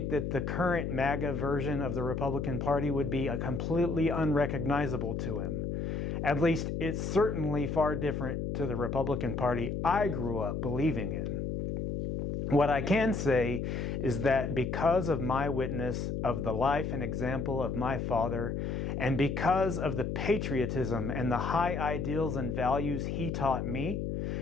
that the current MAGA version of the Republican Party would be completely unrecognizable to him. At least it's certainly far different to the Republican Party I grew up believing in. What I can say is that because of my witness of the life and example of my father, and because of the patriotism and the high ideals and values he taught me,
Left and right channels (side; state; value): left; noise; hum, 2 dB below the sound